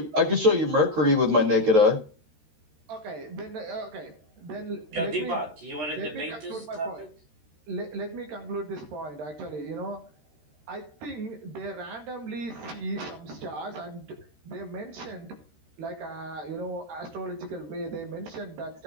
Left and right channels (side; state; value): left; late; 13 ms